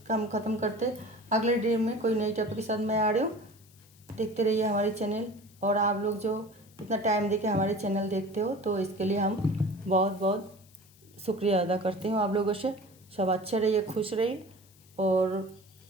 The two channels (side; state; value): left; noise; hiss, 27 dB below the sound